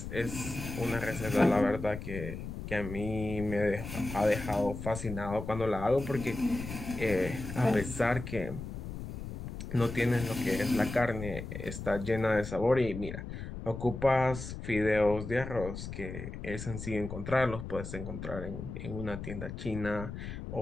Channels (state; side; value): noise; left; rumble, 8 dB below the sound